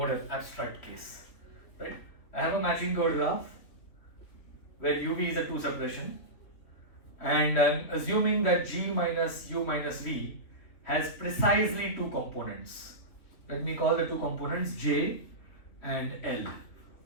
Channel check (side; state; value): right; late; 3.0 ms